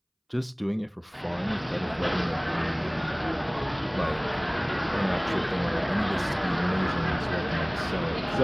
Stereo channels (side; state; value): both; identical; correlation 1.00